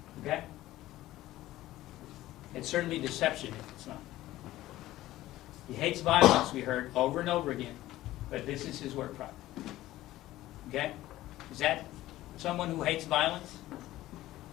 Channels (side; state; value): right; quieter; 15.7 dB